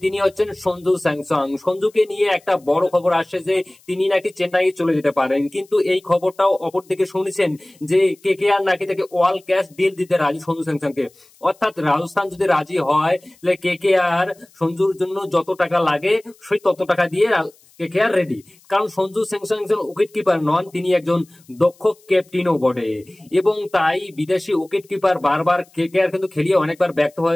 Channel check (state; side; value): noise; left; hiss, 30 dB below the sound